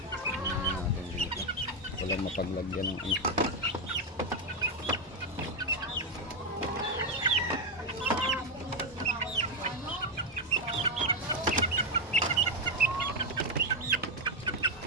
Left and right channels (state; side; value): normal; both; correlation 0.06